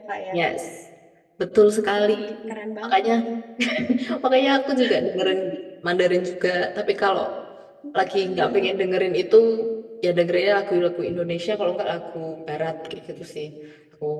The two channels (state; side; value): identical; both; correlation 1.00